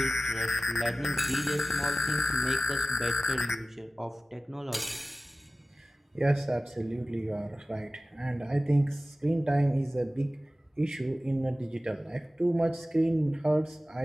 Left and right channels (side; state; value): both; normal; correlation 0.95